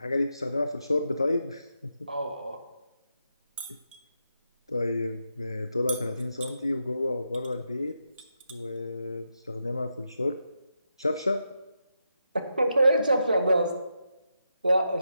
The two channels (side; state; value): both; inverted; correlation -0.85